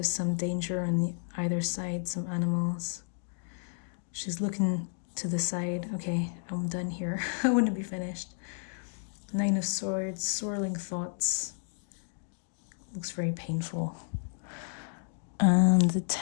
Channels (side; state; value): right; silent; digital silence